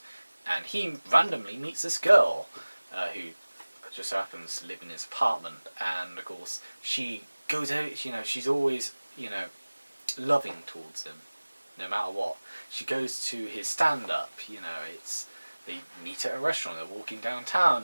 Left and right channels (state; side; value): inverted; both; correlation -1.00